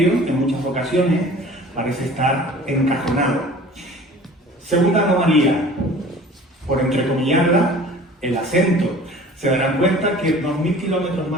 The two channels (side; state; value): both; normal; correlation 0.45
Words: en muchas ocasiones, parece estar encajonado. Segunda anomalía, por entrecomillarla, el acento. Se darán cuenta que 2000 kilómetros